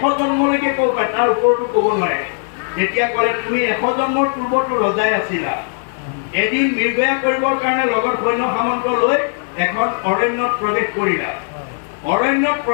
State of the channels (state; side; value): silent; right; digital silence